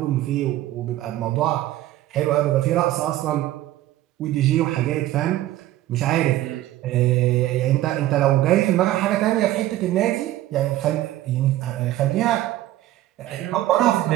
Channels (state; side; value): quieter; left; 14.7 dB